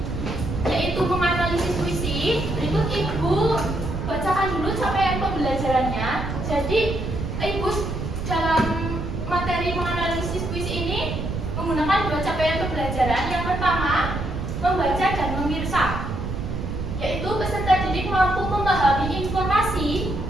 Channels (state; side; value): noise; right; rumble, 4 dB below the sound